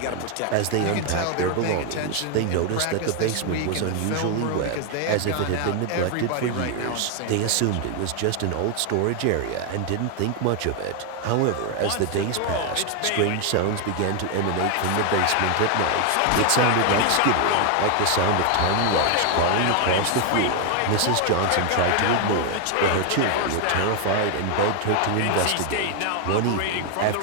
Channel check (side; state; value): both; different; correlation 0.00